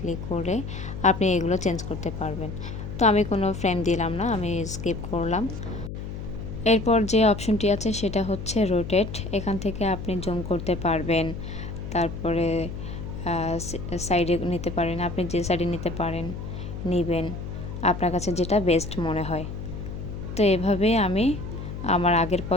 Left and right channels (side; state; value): left; noise; hum, 8 dB below the sound